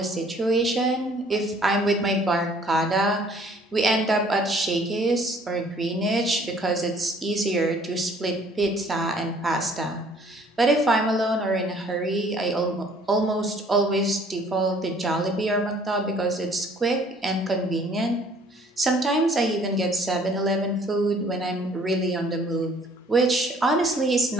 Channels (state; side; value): normal; both; correlation 0.58